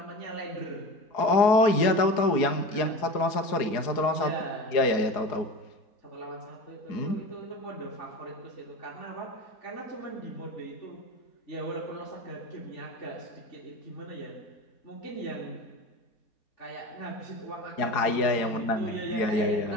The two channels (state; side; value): late; right; 4.8 ms